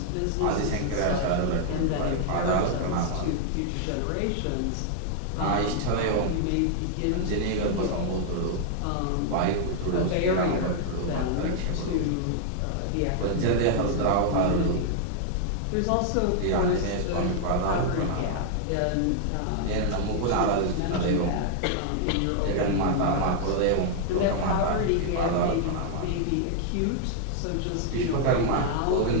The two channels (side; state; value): both; different; correlation -0.01